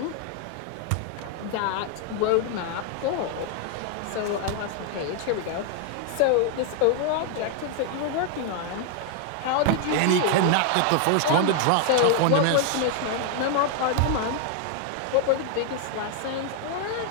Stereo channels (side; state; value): both; different; correlation 0.00